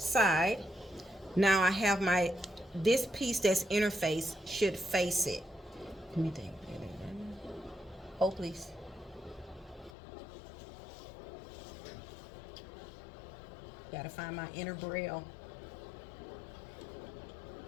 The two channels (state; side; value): drops out; right; at 10.0 s